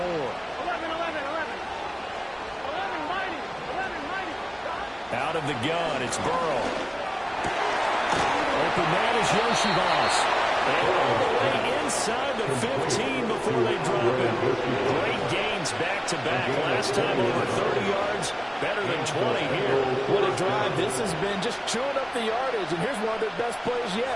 Out of the gun, it's Burrow. Open man is Yoshivas. And all the way inside the 15 before they drop it. Great gains back-to-back. Last time over 30 yards, better than 20 here. What a drive this has been, just chewing up the yardage. And here's one of their best plays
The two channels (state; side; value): identical; both; correlation 1.00